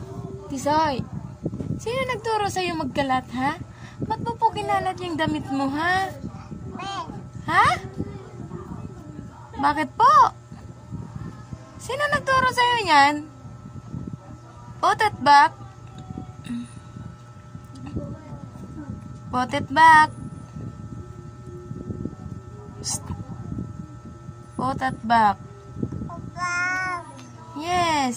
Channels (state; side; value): identical; both; correlation 1.00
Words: Tisoy! Sino nagturo sa'yo magkalat, ha? Ba't mo po kinalat yung damit mo, ha? Ha? Bakit po? Sino nagturo sa'yo niyan? Put it back. Put it back. Psst. Put it back.